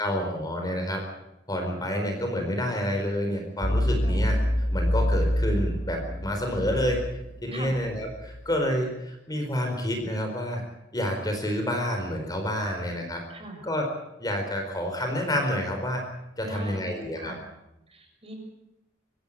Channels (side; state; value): both; normal; correlation 0.67